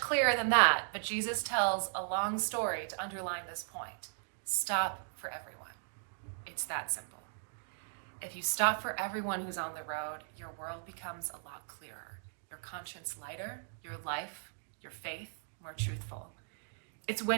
than that, but Jesus tells a long story to underline this point. Stop for everyone. It's that simple. If you stop for everyone who's on the road, your world becomes a lot clearer, your conscience lighter, your life, your faith more truthful. It's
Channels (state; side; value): silent; left; digital silence